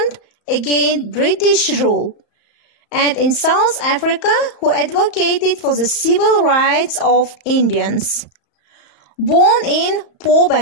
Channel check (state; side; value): late; right; 34 ms